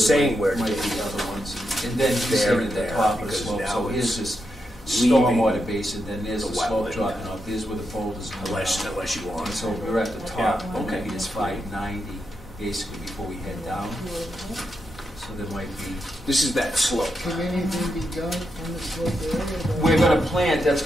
where might to be other ones. And then you There said and at the there, top of the because slope. now So here's it's this leaving stormwater basin, then there's the the slope wetland. dropping off. There's where the boulders come unless out. you want. And so we're at the top. Yeah, okay. Maybe it's 590. basically before we head down. So there might be, This is that slope. Can anything be done on the slope area? we're gonna plant,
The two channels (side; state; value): both; normal; correlation 0.85